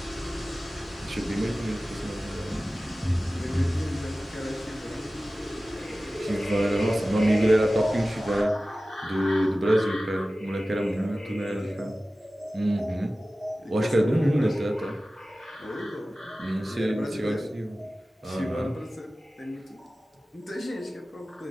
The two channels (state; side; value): normal; both; correlation 0.96